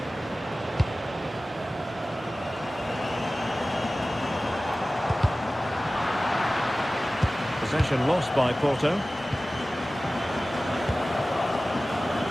Possession lost by Porto.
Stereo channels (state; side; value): normal; both; correlation 0.97